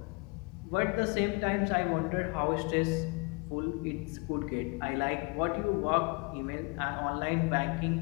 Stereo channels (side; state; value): right; quieter; 29.9 dB